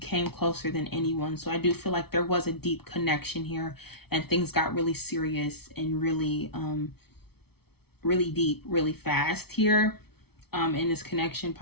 closer than anyone. So I do feel like there was a deep connection here, and things got really serious and really really deep really fast here in this connection,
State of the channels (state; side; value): late; right; 0.96 ms